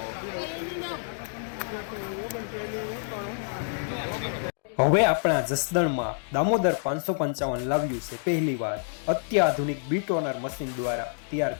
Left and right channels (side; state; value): right; silent; digital silence